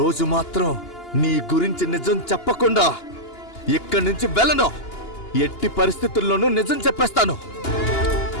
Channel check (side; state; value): right; late; 2.8 ms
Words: మాత్రం నీ గురించి నిజం చెప్పకుండా ఇక్కడి నుంచి వెళ్ళను. ఎట్టి పరిస్థితుల్లోనూ నిజం చెప్పేస్తాను.